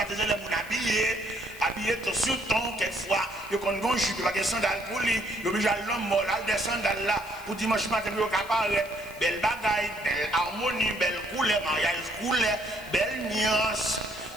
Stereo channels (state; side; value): noise; left; hiss, 19 dB below the sound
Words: les gens habillés tout sur ton, quelquefois, ils ont une jupe, ils n'ont pas de sandales pour lui, ils ont obligé à l'homme mort, des sandales là, pour dimanche matin, ils ont apparaître, belle bagaille, belle harmonie, belle couleur, mariage couleur, belle nuance,